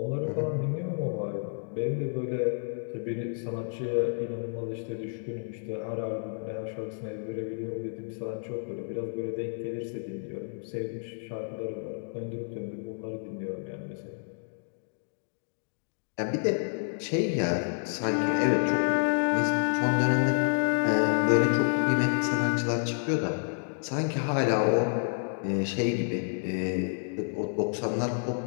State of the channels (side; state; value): right; silent; digital silence